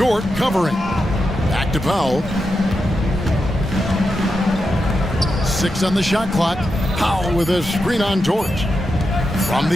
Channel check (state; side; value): normal; both; correlation 0.87